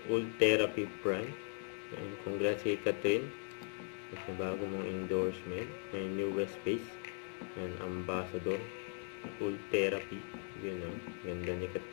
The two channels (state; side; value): silent; right; 52 dB below the other